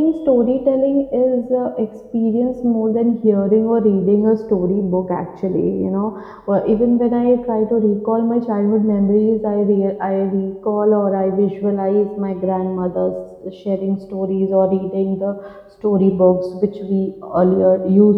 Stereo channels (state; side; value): identical; both; correlation 1.00